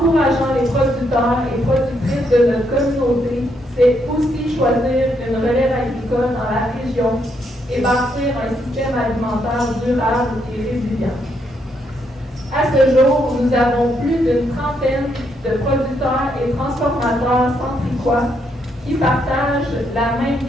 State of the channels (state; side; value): normal; both; correlation 0.76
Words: les producteurs et productrices de notre communauté, c'est aussi choisir une relève agricole dans la région et bâtir un système alimentaire durable et résilient. À ce jour, nous avons plus d'une trentaine de producteurs et transformateurs centricois qui partagent la même